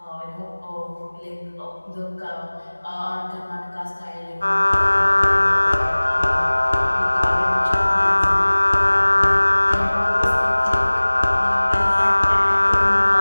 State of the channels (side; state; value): both; inverted; correlation -1.00